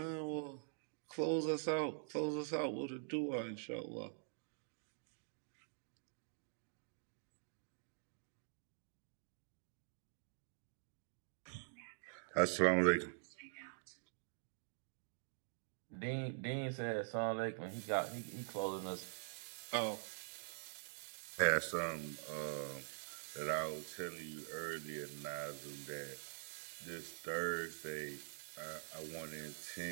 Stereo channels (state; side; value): silent; left; digital silence